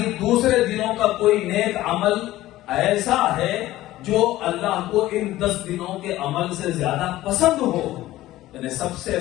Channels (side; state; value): right; quieter; 15.7 dB